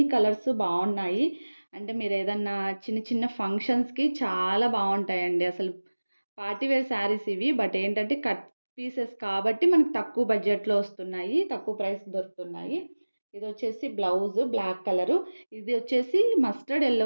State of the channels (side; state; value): both; inverted; correlation -1.00